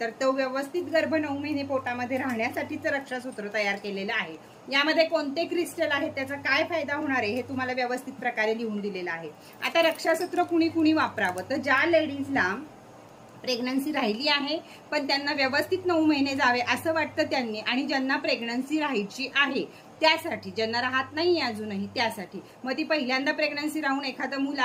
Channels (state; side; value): identical; both; correlation 1.00